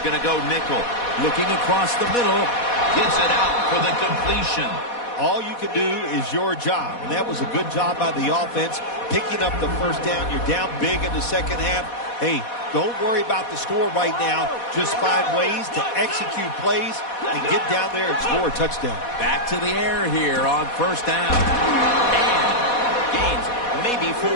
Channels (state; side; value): late; right; 4.1 ms